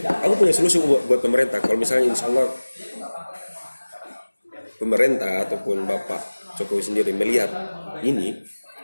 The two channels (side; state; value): both; inverted; correlation -1.00